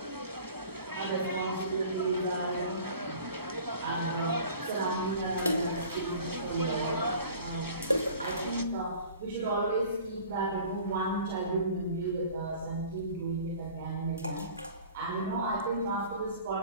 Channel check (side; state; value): both; inverted; correlation -0.46